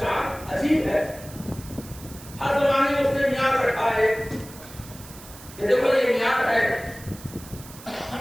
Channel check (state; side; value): noise; right; hiss, 18 dB below the sound